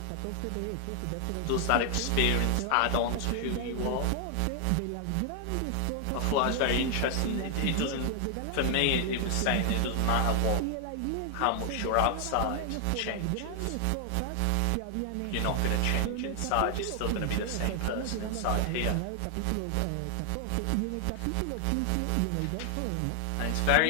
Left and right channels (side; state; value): both; different; correlation 0.00